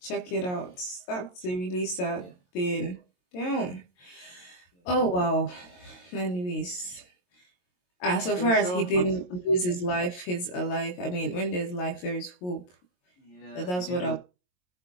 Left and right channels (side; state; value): right; late; 22 ms